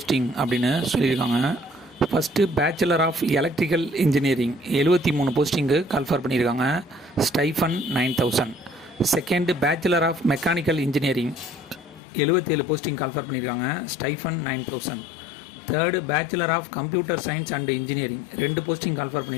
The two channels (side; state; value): right; drops out; at 12.0 s